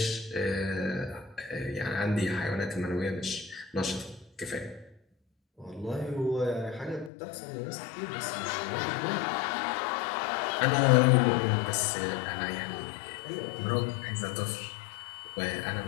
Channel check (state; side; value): drops out; right; at 7.1 s